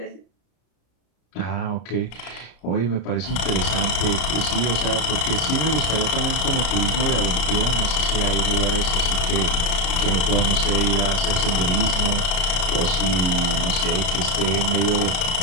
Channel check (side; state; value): right; late; 33 ms